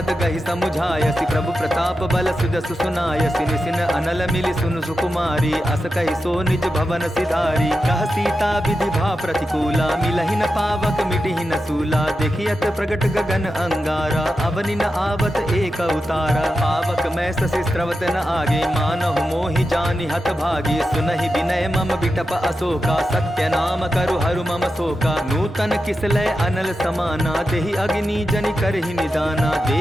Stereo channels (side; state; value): both; normal; correlation 0.90